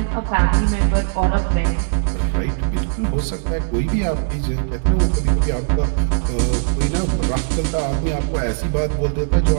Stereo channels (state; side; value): silent; left; digital silence